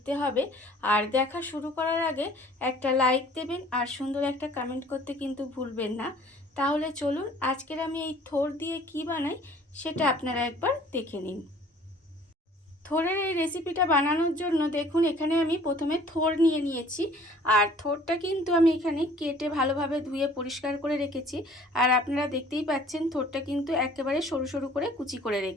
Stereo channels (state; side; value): normal; both; correlation 0.53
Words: হবে। আর দেখা শুরু করার আগে একটা লাইক দেবেন আর সুন্দর একটা কমেন্ট করতে কিন্তু ভুলবেন না। তাহলে চলুন আজকের আমি এই থোড় দিয়ে কি বানাই সেটা আপনারা একবার দেখে নিন। থোড়ের এই রেসিপিটা বানানোর জন্য দেখুন এখানে আমি প্রথমে থোড় নিয়ে নিয়েছি। আর থোড়টা কিন্তু আমি এখানে কেটে ভালোভাবে ধুয়ে পরিষ্কার করে রেখেছি। আর আপনারা দেখতেই পাচ্ছেন থোড়টা কিন্তু একেবারে সরু সরু করে কুচি করে